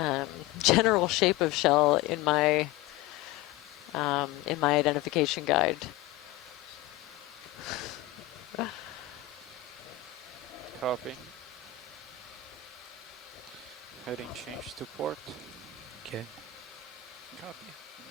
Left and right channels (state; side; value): quieter; right; 13.4 dB